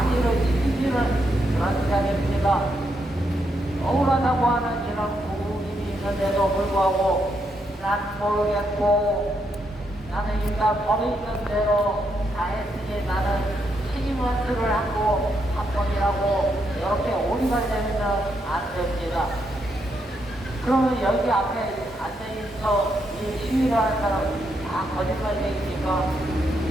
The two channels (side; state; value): both; normal; correlation 0.79